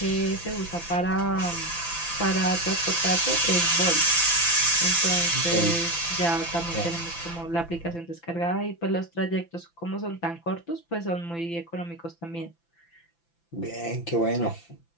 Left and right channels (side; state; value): right; late; 5.9 ms